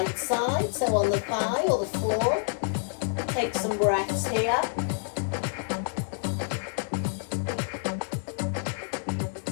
side, so on the thigh or the floor. Take some breaths here.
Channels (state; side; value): silent; right; digital silence